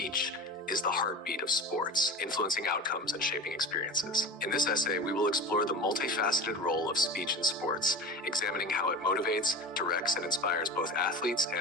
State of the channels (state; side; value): normal; both; correlation 0.31